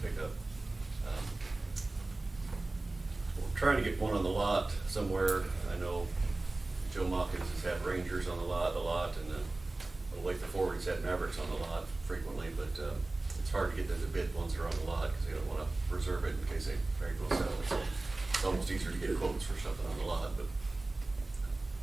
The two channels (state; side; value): quieter; left; 3.1 dB